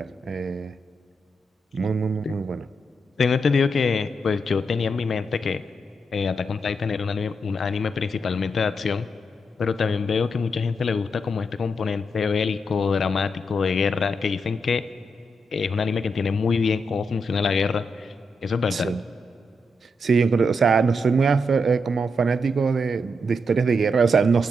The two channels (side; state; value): both; normal; correlation 0.82